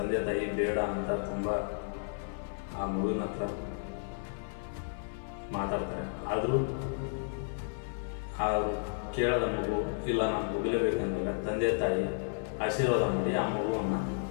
ತಾಯಿ ಬೇಡ ಅಂತ ತುಂಬ ಆ ಮಗುವಿನ ಹತ್ರ ಮಾತಾಡ್ತಾರೆ. ಆದರೂ ಆ ಕೇಳದ ಮಗು ಇಲ್ಲ, ನಾನು ಹೋಗಲೇಬೇಕಂದಾಗ ತಂದೆ ತಾಯಿ ಆಶೀರ್ವಾದ ಮಾಡಿ ಆ ಮಗುವನ್ನು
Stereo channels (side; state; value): right; silent; 56 dB below the other